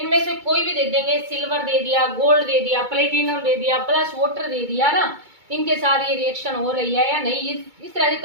से कोई भी दे देंगे, सिल्वर दे दिया, गोल्ड दे दिया, प्लेटिनम दे दिया, प्लस वाटर दे दिया ना, इनके साथ ये रिएक्शन हो रही है या नहीं, इस तरह से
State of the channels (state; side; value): late; left; 2.2 ms